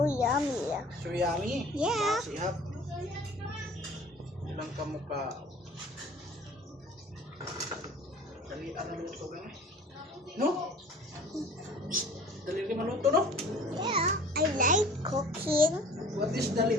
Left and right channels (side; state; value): both; normal; correlation 0.47